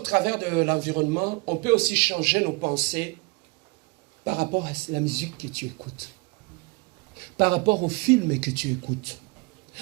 de l'environnement, on peut aussi changer nos pensées par rapport à la musique que tu écoutes, par rapport aux films que tu écoutes,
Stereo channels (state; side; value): quieter; left; 27.7 dB